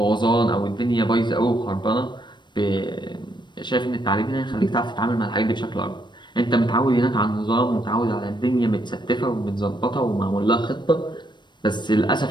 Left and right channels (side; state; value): right; late; 0.22 ms